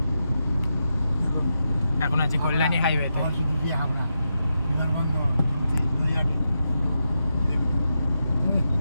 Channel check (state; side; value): inverted; both; correlation -0.87